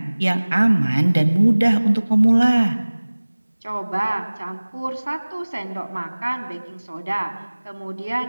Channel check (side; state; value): both; inverted; correlation -1.00